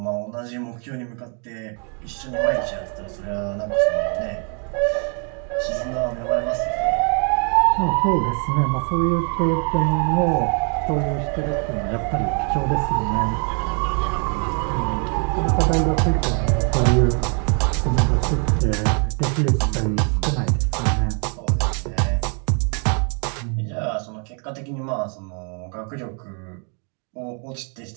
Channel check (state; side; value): quieter; left; 39.6 dB